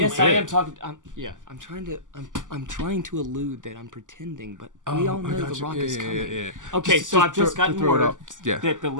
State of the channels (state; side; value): late; left; 0.87 ms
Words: Yes, bit? I am talking. I'm trying to allude that I'm pretending, but we all know the Rock is coming. Yeah. Okay, so I've just gotten throw it word up. Yeah. that the